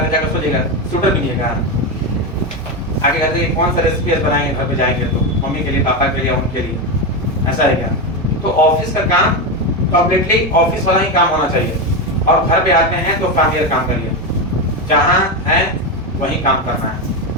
जाकर सोचिएगा शूटर भी नहीं है, आगे कहते हैं कौन सा रेसिपी बनाएंगे घर पे जाएंगे तो मम्मी के लिए, पापा के लिए, उनके लिए, ऐसा है क्या? तो ऑफिस का काम कंप्लीटली ऑफिस वाला ही काम होना चाहिए, और घर पे आते हैं तो फैमिलियर काम करिए, जहाँ है वहीं काम करना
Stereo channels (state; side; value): normal; both; correlation 0.12